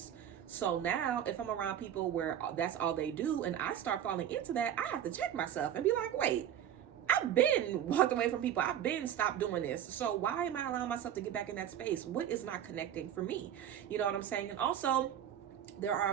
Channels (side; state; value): left; quieter; 10.2 dB